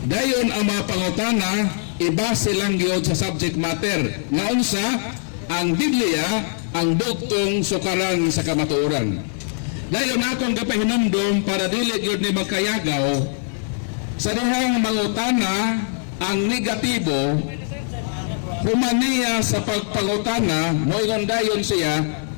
Dayon ang mga pangutana ibase lang gyud sa subject matter nga unsa ang Biblia ang bugtong sukaran sa kamatuoran. Dayon akong gapahinumdom para dili gyud ni magkayagaw sa dihang mangutana ang negatibo humaniya sa pagpangutana moingon dayon siya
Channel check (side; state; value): right; silent; 64 dB below the other